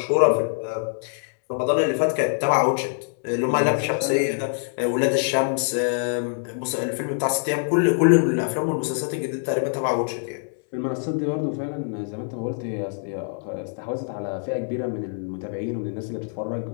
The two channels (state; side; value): silent; right; digital silence